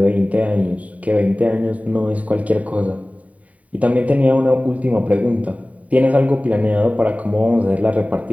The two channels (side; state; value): left; late; 0.069 ms